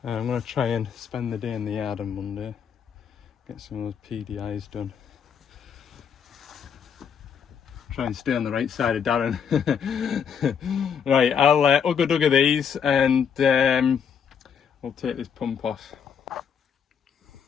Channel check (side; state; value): right; quieter; 7.3 dB